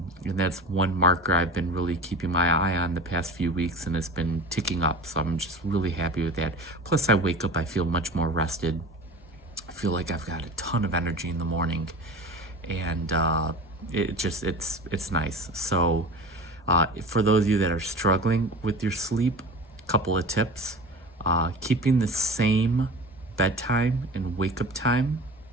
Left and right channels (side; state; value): both; normal; correlation 0.35